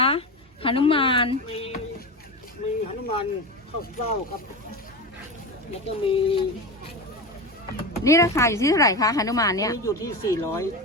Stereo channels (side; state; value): both; normal; correlation 0.22